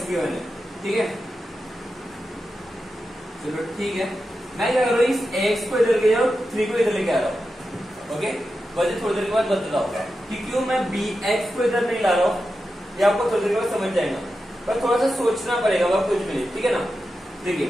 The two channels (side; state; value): both; normal; correlation 0.90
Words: गिवन है, ठीक है। चलो ठीक है, मैं क्या कर रहा हूँ, इस x को इधर ले जाऊँ, 3 को इधर लेके आ रहा हूँ, ओके। वजह थोड़ी देर के बाद बताता हूँ कि क्यों मैं bx को इधर नहीं ला रहा हूँ, ये आपको थोड़ी देर के बाद समझ जाएगा, पर थोड़ा सा सोचना पड़ेगा, वह कुछ भी नहीं, ठीक है ना। देखिए